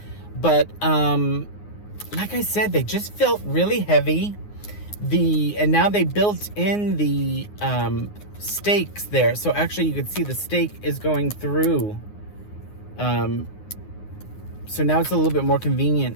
But like I said, they just felt really heavy. And now they built in the stakes there, so actually you can see the stake is going through. So now it's a little bit more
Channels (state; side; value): late; right; 9.6 ms